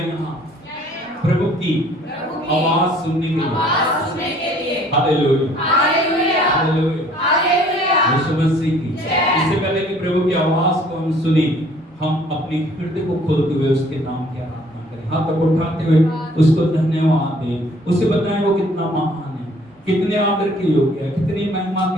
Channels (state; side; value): normal; both; correlation 0.57